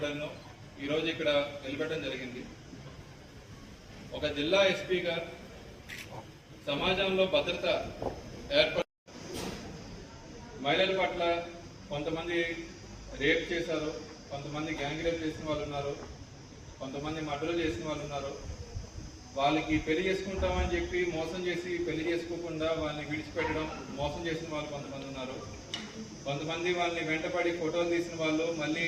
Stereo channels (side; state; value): both; identical; correlation 1.00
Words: ఈరోజు ఇక్కడ నిలబెట్టడం జరిగింది. ఒక జిల్లా ఎస్పీగా సమాజంలో భద్రత మహిళల పట్ల కొంతమంది రేప్ చేశారు, కొంతమంది గ్యాంగ్ రేప్ చేసిన వాళ్ళు ఉన్నారు, కొంతమంది మర్డర్ చేసిన వాళ్ళు ఉన్నారు. వాళ్ళకి పెళ్లి చేసుకుంటామని చెప్పి మోసం చేసి పెళ్లి చేసుకోకుండా వాళ్ళని విడిచిపెట్టడం, మోసం చేసిన వాళ్ళు కొంతమంది ఉన్నారు. కొంతమంది వాళ్ళని వెంటపడి ఫోటోలు తీసిన వాళ్ళు మళ్ళీ